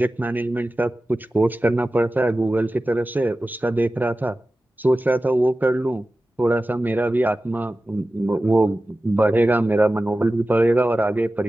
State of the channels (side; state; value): both; normal; correlation 0.95